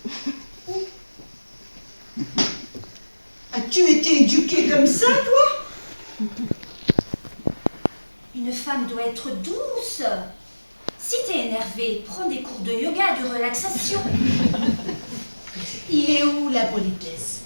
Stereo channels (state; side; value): inverted; both; correlation -1.00